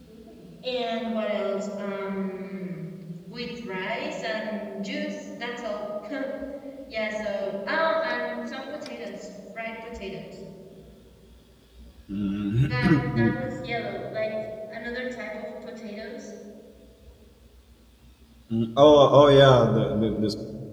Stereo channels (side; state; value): both; identical; correlation 1.00